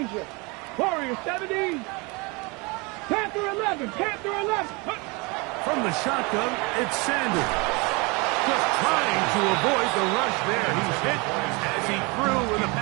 Warrior 70. Panther 11, Panther 11. From the shotgun, it's Sanders. Just trying to avoid the rush there. He's hit as he threw, and the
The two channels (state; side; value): quieter; left; 27.9 dB